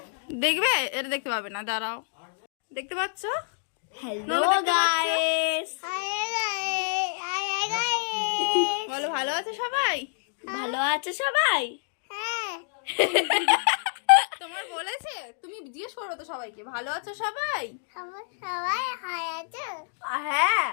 দেখবে? এটা দেখতে পাবে না, দাঁড়াও। দেখতে পাচ্ছ? Hello guys. Hi guys. বলো, ভালো আছে সবাই? ভালো আছে সবাই? হ্যাঁ। তোমার বলেছে? তুমি জিজ্ঞেস করো তো সবাইকে, ভালো আছো সবাই? সবাই হাই আছে? হ্যাঁ,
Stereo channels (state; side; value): silent; right; digital silence